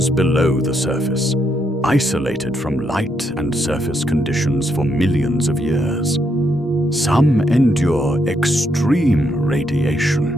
below the surface, isolated from light and surface conditions for millions of years. Some endure extreme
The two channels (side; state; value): both; normal; correlation 0.77